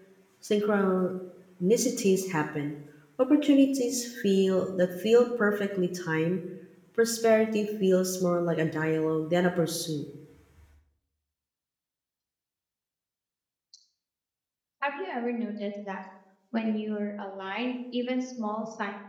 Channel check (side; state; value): both; identical; correlation 1.00